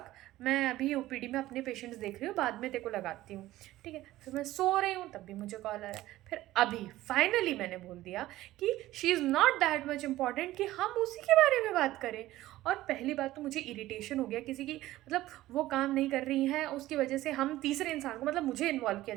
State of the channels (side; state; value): left; quieter; 15.9 dB